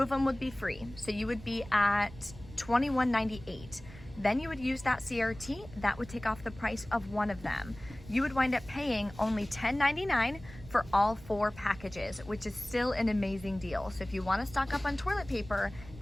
them would be free. So you would be at $21.98. Then you would use that CRT, that would take off the price of 1 of them. You would wind up paying only $10.99 for all 4 packages, which is still an amazing deal. So if you want to stock up on toilet paper,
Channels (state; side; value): noise; right; rumble, 17 dB below the sound